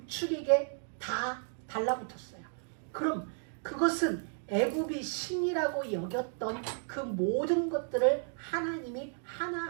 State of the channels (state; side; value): silent; left; 56 dB below the other